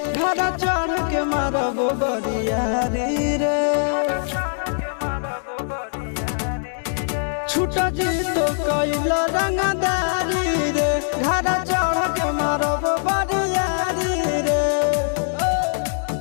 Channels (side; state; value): right; silent; 64 dB below the other